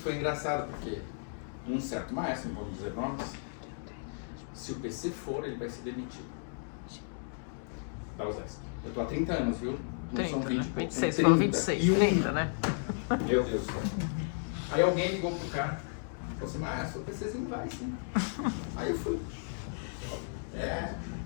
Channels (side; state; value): right; silent; digital silence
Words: engraçado, porque um certo maestro, não vamos dizer nomes, se o PC for, ele vai ser demitido. Da USESP. Eu estou há 30 anos, viu? Não 30, são 20, né? 26, 30, falou 26, 30, né? Meu Deus do céu. Aí alguém ligou pro cara, falou assim, maestro, o PCzinho vai sim. Aí eu fui.